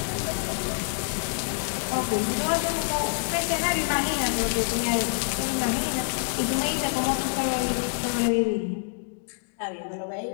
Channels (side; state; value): right; silent; digital silence